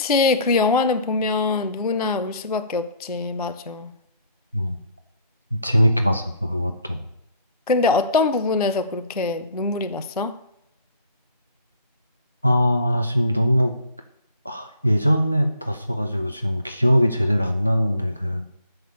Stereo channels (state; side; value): inverted; both; correlation -0.55